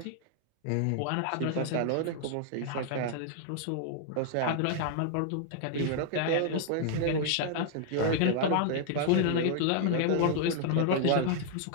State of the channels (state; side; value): different; both; correlation 0.00